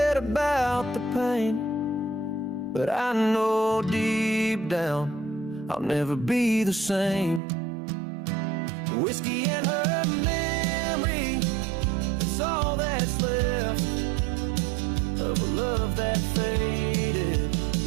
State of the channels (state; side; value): drops out; left; at 7.4 s